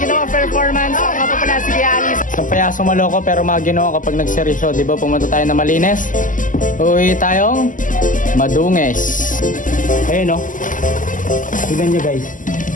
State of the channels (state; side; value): late; right; 0.38 ms